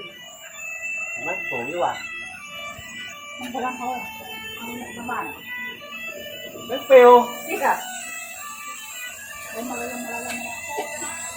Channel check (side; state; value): both; identical; correlation 1.00